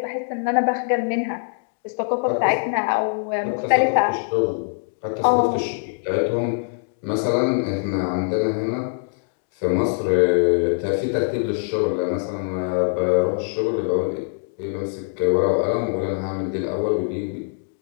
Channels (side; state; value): right; silent; digital silence